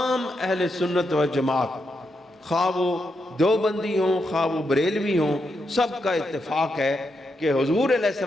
اہل سنت و جماعت، خواہ وہ دیوبندی ہوں خواہ وہ بریلوی ہوں، سب کا اتفاق ہے کہ حضور علیہ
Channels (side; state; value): both; normal; correlation 0.83